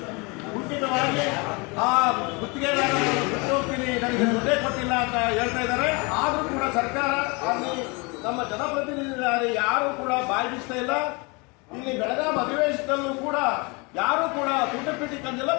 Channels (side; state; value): right; quieter; 28.9 dB